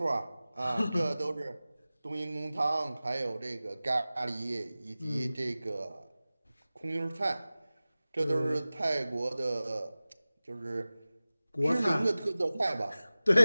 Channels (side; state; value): both; inverted; correlation -0.97